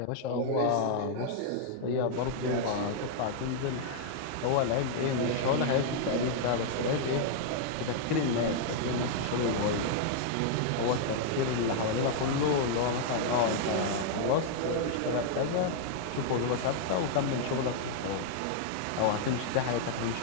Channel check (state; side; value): different; both; correlation -0.01